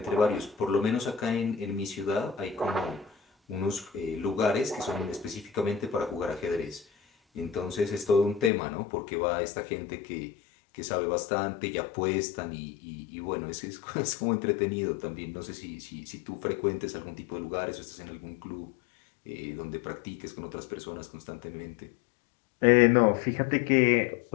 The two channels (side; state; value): right; drops out; at 8.5 s